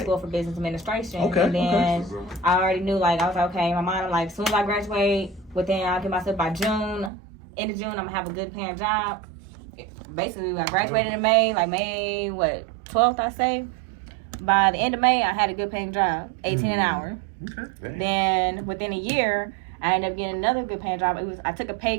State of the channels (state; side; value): drops out; left; at 7.1 s